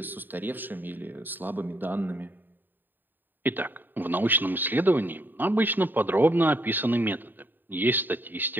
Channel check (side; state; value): left; late; 0.092 ms